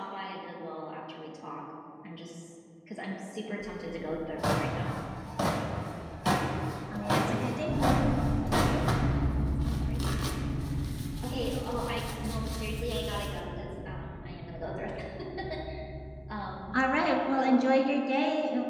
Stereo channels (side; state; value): both; identical; correlation 1.00